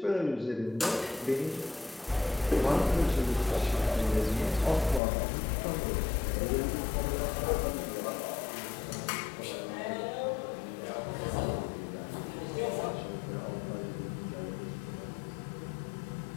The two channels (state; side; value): drops out; right; at 5.0 s